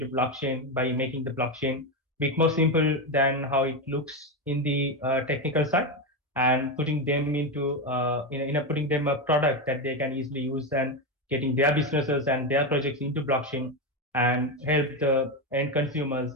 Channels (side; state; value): both; normal; correlation 0.12